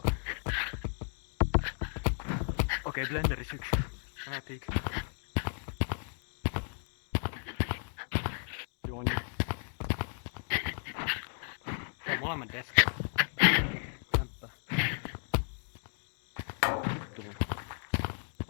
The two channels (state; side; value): silent; right; 55 dB below the other